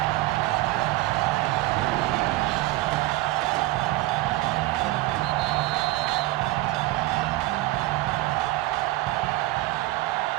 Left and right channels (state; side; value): quieter; left; 18.4 dB